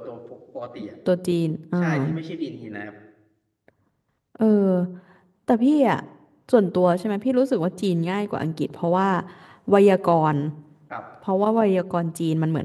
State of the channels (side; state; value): both; identical; correlation 1.00